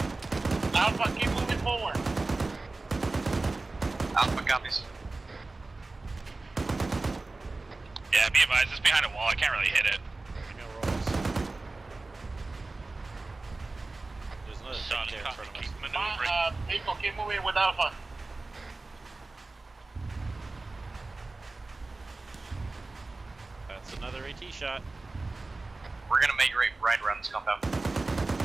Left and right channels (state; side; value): quieter; left; 3.3 dB